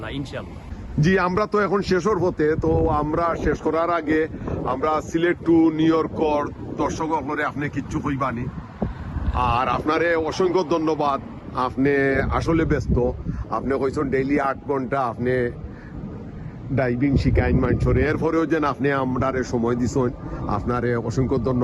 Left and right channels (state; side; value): identical; both; correlation 1.00